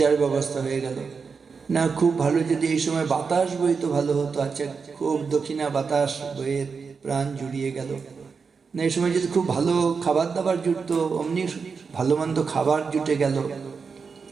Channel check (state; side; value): quieter; left; 5.3 dB